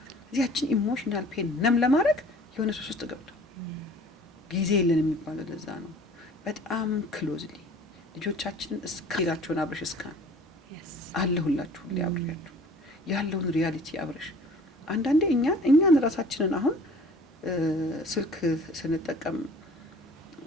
እዚያችን ኢሞሽናል ፔን ነም ለማድረግ የሆነ ሶስት ውስጥ ገብቶ ጊዜ የለን የሚባለው ለዛ ነው። በጣም ክሎዝሊ ልጆቻችንን እስከሌላቸውን አብረሽ እስካን አለሁላችሁ ሁሌ አብሬያችሁ ያለውን ሪያሊቲ አብረሽ አንዳንዴ እኛን ራሳችንን አሁን ስልክ ስንጠቀም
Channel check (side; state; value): both; normal; correlation 0.48